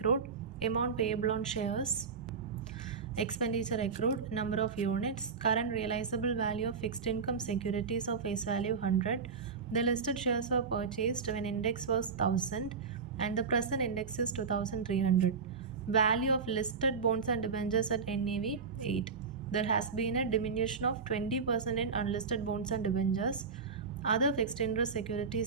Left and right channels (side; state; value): left; quieter; 5.3 dB